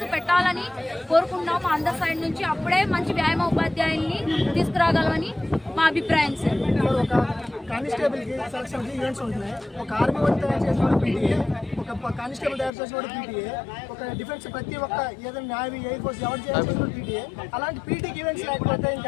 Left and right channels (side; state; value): right; drops out; at 12.7 s